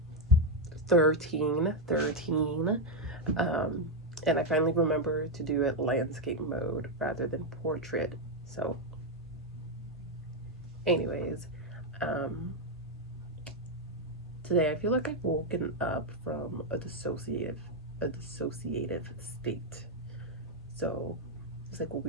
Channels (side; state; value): both; normal; correlation 0.02